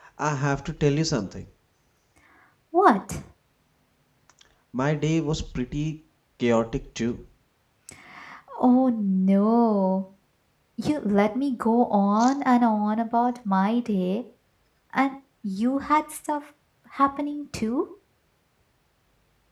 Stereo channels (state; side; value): identical; both; correlation 1.00